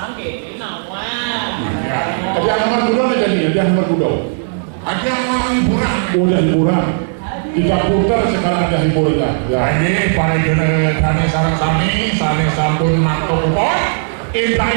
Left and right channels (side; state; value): left; silent; digital silence